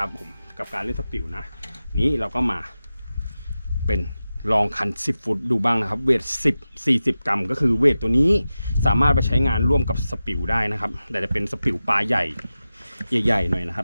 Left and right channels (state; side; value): inverted; both; correlation -0.93